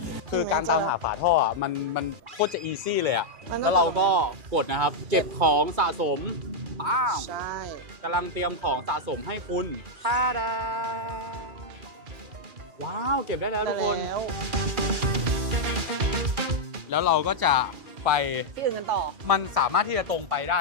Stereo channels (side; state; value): left; late; 2.4 ms